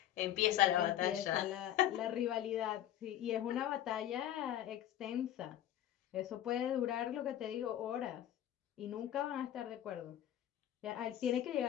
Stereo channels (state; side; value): quieter; right; 11.8 dB